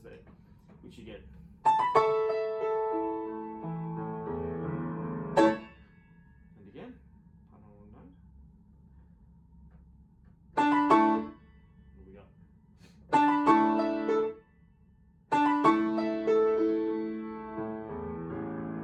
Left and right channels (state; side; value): identical; both; correlation 1.00